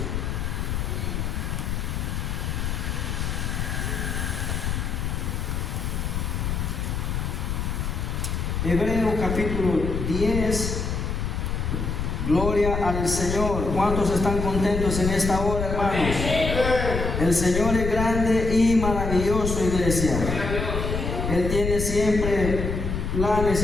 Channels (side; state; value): left; noise; rumble, 2 dB below the sound